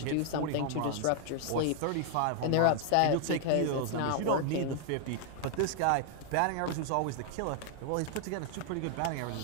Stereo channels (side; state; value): both; different; correlation 0.00